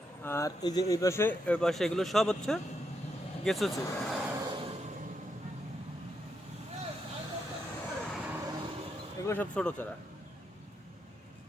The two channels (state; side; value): normal; both; correlation 0.81